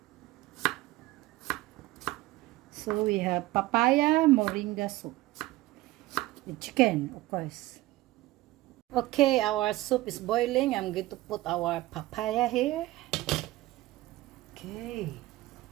So we have papaya moringa soup with chicken, of course. Okay, our soup is boiling. I'm going to put our papaya here. Okay.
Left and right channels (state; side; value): quieter; left; 18.0 dB